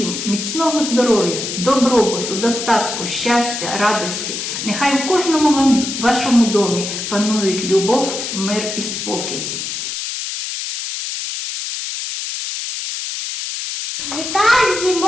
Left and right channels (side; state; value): left; noise; hiss, 5 dB below the sound